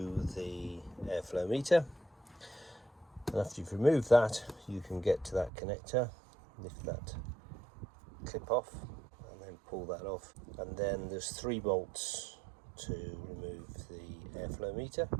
the airflow meter. And after you've removed that, you can get to that connector, lift that clip off, and then pull that off. And then there's 3 bolts to remove the airflow meter.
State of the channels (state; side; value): drops out; left; at 5.5 s